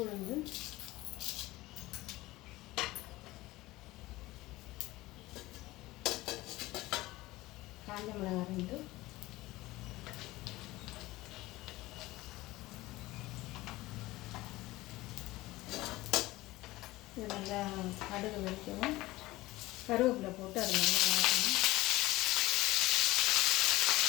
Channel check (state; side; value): quieter; right; 18.8 dB